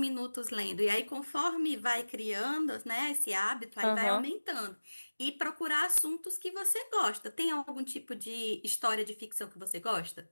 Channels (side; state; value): both; inverted; correlation -1.00